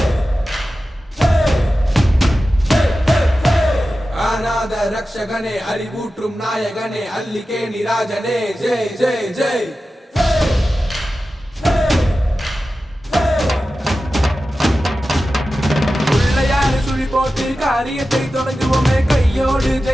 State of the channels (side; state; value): both; normal; correlation 0.94